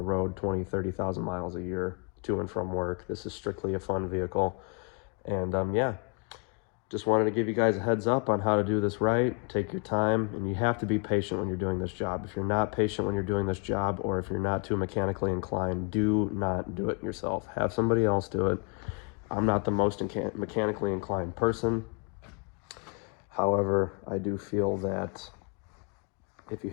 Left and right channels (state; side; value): quieter; right; 34.2 dB